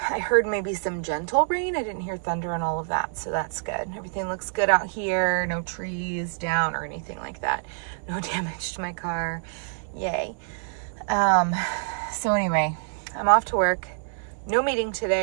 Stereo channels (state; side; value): silent; left; digital silence